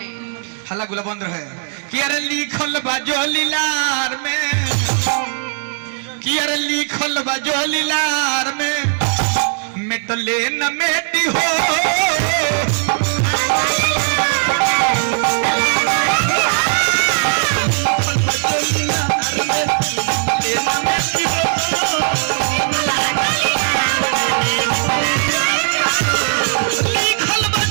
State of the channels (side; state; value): left; silent; digital silence